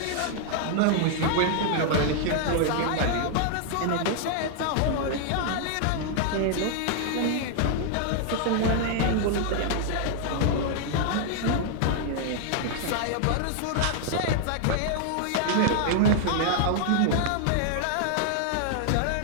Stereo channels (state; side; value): different; both; correlation 0.00